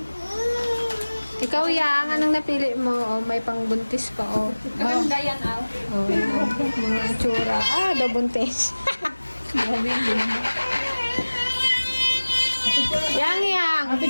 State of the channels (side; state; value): both; inverted; correlation -1.00